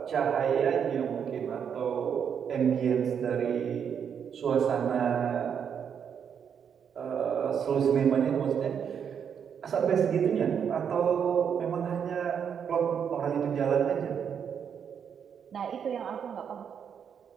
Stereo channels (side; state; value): left; quieter; 7.7 dB